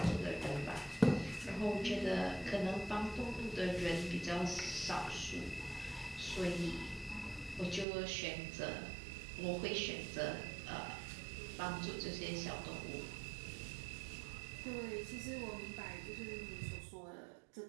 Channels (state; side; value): drops out; left; at 7.9 s